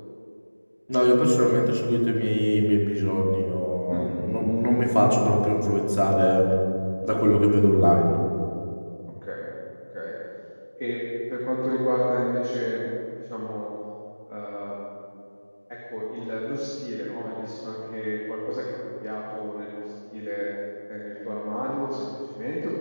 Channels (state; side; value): inverted; both; correlation -1.00